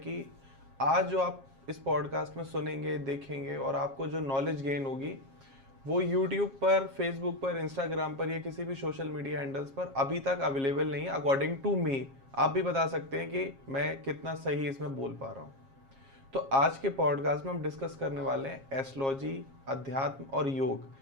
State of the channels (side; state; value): left; late; 7.4 ms